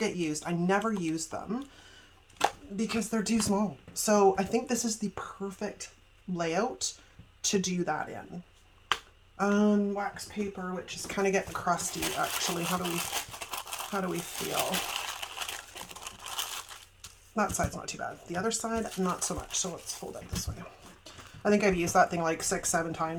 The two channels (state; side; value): identical; both; correlation 1.00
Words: used. I never use them because they're too small. So I think this is the perfect layout to do that in. Wax paper, which is kind of getting crusty actually. How do we feel? That side's not too bad. The other side, not so much. So let's fold it this way. I think I've used that thing like 6-7